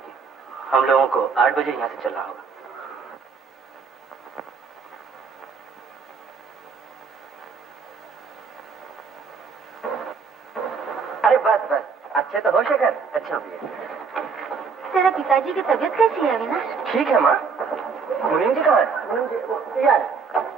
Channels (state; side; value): quieter; left; 5.4 dB